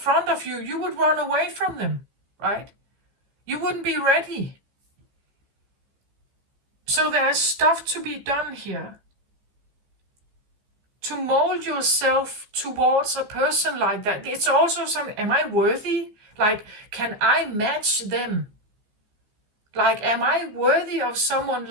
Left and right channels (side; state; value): left; late; 15 ms